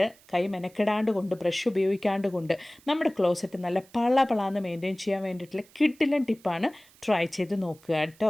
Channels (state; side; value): noise; right; hiss, 27 dB below the sound